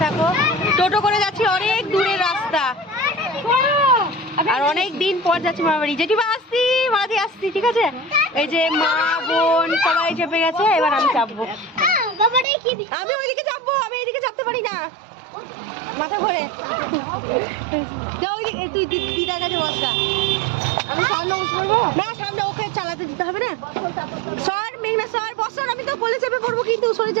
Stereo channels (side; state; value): left; drops out; at 12.5 s